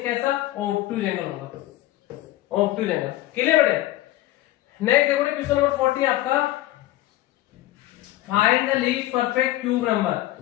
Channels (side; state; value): right; quieter; 15.8 dB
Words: कैसा ऑब्टूज एंगल होगा, ऑब्टूज एंगल। क्लियर बेटे। नेक्स्ट देखो क्वेश्चन नंबर 40 आपका, find the least perfect cube number